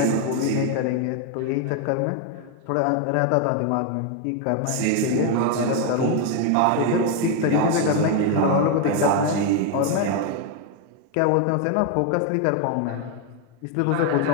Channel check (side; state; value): both; different; correlation 0.01